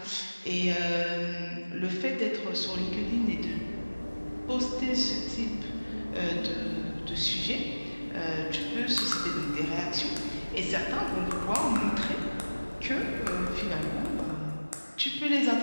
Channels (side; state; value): both; inverted; correlation -1.00